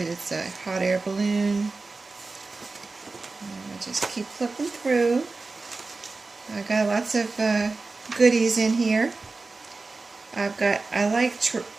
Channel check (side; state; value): left; quieter; 3.7 dB